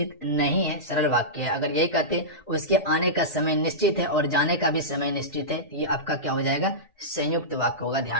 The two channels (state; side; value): normal; both; correlation -0.14